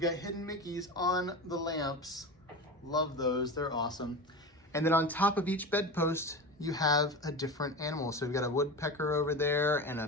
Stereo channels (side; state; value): both; normal; correlation 0.26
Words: got hidden Mickeys on the lamps. Love those, they're awesome. And then on top of each bedpost, you have a different animal. So we've got a woodpecker over there and a